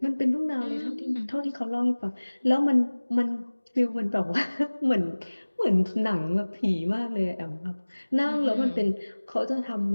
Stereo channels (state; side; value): inverted; both; correlation -1.00